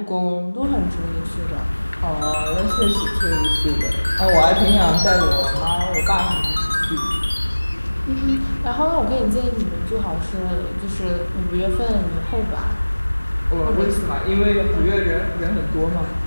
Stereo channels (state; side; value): inverted; both; correlation -1.00